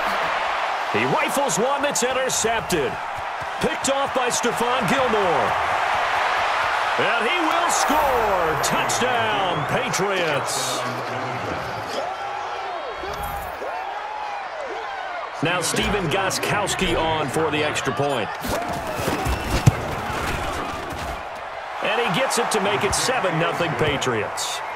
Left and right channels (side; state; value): both; identical; correlation 1.00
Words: He rifles one that's intercepted. Picked off by Stephon Gilmore. And he will score. Touchdown, Patriots. Now Stephen Gostkowski on for the extra point. And he gets it to make it 7-0 Patriots.